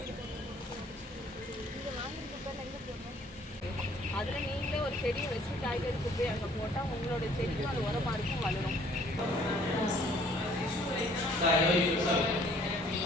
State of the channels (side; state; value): both; normal; correlation 0.58